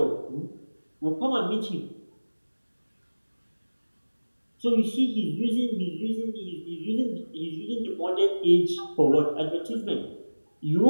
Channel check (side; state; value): both; inverted; correlation -1.00